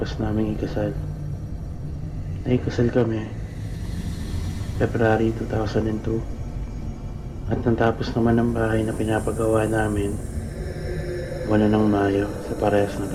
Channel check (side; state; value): both; identical; correlation 1.00